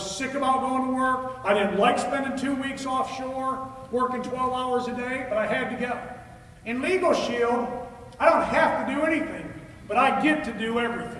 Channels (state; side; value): identical; both; correlation 1.00